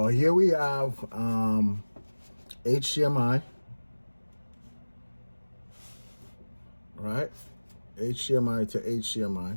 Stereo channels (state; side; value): inverted; both; correlation -1.00